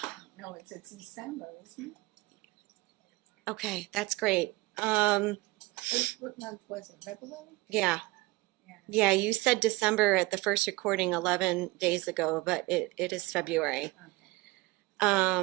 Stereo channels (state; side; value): quieter; left; 22.1 dB